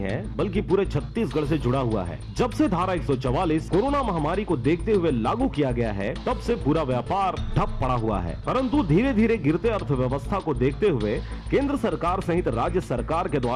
बल्कि पूरे छत्तीसगढ़ से जुड़ा हुआ है। जब से धारा 144 कोरोना महामारी को देखते हुए लागू किया गया है, तब से पूरा व्यापार ठप पड़ा हुआ है। परंतु धीरे धीरे गिरते अर्थव्यवस्था को देखते हुए केंद्र सरकार सहित राज्य सरकार के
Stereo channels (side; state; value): both; identical; correlation 1.00